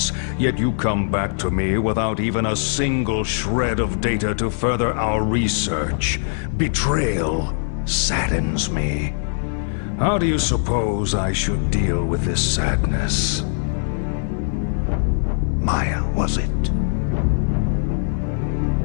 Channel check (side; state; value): right; silent; digital silence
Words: yet you come back to me without even a single shred of data to further our research. Betrayal saddens me. How do you suppose I should deal with this sadness? Maya, was it?